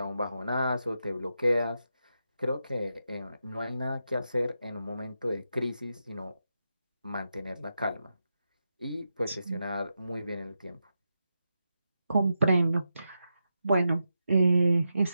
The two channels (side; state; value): both; inverted; correlation -0.87